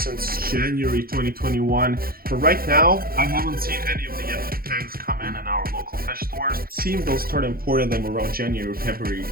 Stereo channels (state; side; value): late; left; 0.43 ms